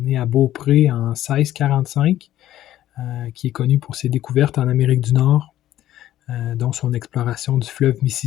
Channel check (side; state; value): right; quieter; 13.1 dB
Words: né à Beaupré en 1645, qui est connu pour ses découvertes en Amérique du Nord, dont son exploration du fleuve